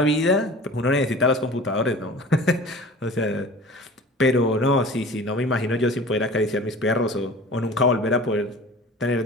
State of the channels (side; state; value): both; normal; correlation 0.41